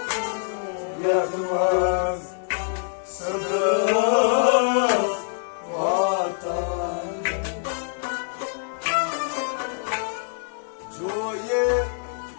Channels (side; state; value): right; silent; digital silence